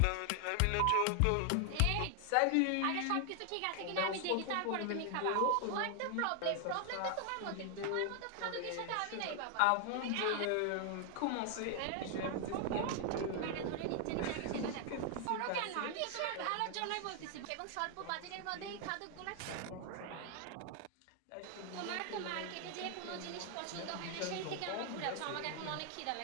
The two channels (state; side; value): different; both; correlation 0.00